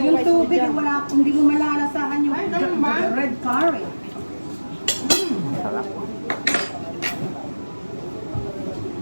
yung rice mo tubig, dyan. hindi mo malalasahan yung Ay, ganun ba? the red curry. Sarap.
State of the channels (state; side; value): inverted; both; correlation -1.00